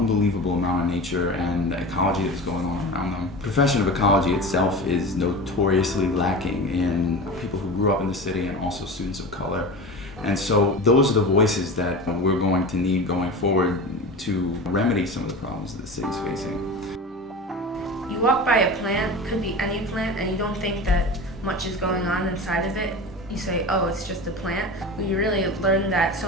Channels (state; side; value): normal; both; correlation 0.31